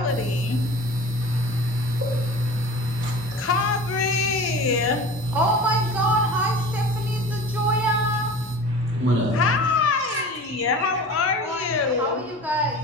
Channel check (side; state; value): both; normal; correlation 0.38